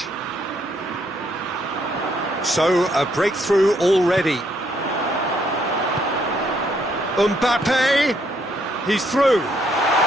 So, a breakthrough already. Mbappe, he's through.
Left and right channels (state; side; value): normal; both; correlation 0.71